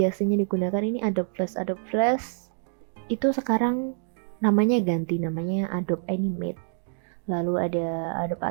digunakan ini Adobe Flash. Adobe Flash itu sekarang namanya ganti, namanya Adobe Animate. Lalu ada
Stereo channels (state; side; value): silent; left; digital silence